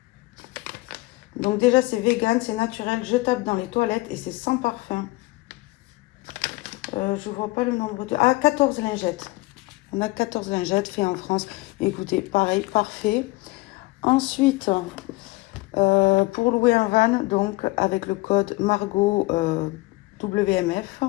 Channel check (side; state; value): right; quieter; 21.3 dB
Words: Donc déjà c'est vegan, c'est naturel, jetable dans les toilettes et c'est sans parfum. Je vois pas le nombre de... Ah, 14 lingettes. On a 14 lingettes faites en France. Écoutez, pareil, parfait. Ensuite, pour louer un van, donc avec le code Margot WMF,